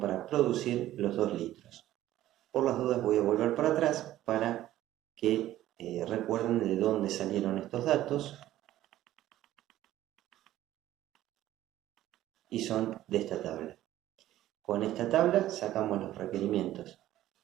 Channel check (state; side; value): quieter; left; 14.0 dB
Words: producir los 2 litros. Por las dudas voy a volver para atrás para que recuerden de dónde salieron estos datos, y son de esta tabla. Con esta tabla sacamos los requerimientos.